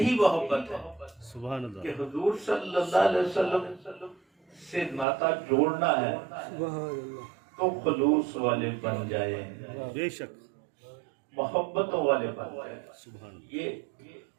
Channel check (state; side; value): drops out; left; at 5.1 s